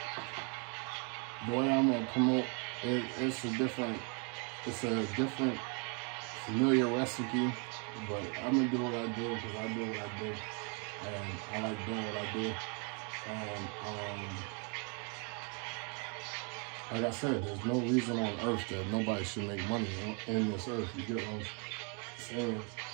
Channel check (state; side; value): quieter; left; 36.8 dB